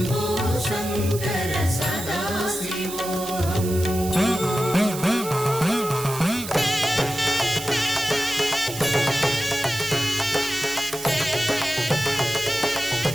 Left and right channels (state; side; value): noise; right; hiss, 10 dB below the sound